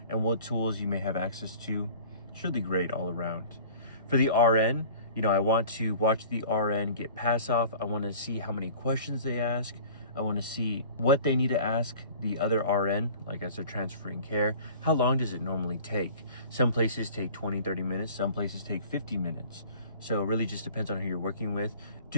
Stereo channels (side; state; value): both; inverted; correlation -0.45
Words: and what tools you may have access to. It's really great all around. For the RN, I want to watch the RN get pass off. I want to see how many questions they ask. I want to see what they need to ask the other RN, like as they're transferring care. How long does it normally take? Some places take 20, 30 minutes. Some places take 50 minutes. So it really just depends on who you're working with.